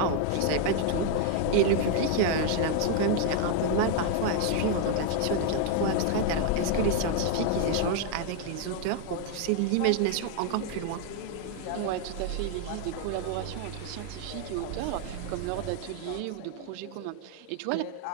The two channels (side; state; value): both; different; correlation 0.00